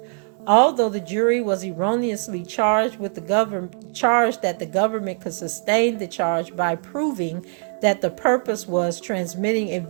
Although the jury was erroneously charged that the government could sustain the charge by proving that the purpose was transmitting a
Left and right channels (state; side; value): silent; left; 55 dB below the other